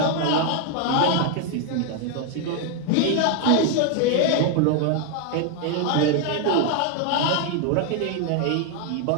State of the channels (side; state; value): both; different; correlation 0.01